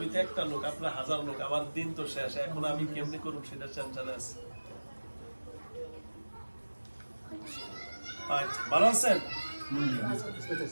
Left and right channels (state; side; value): inverted; both; correlation -1.00